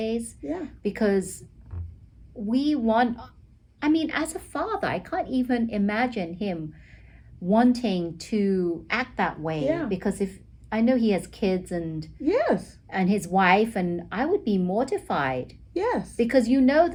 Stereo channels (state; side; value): identical; both; correlation 1.00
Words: Yeah. Because as a father, I can't even imagine him wanting to act that way. Yeah. Because if I know he has kids and his wife, and I would be mortified. Yes. Because